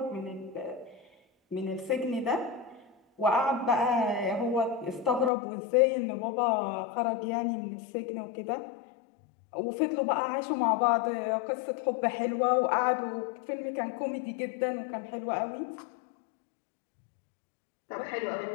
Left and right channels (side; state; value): right; drops out; at 5.3 s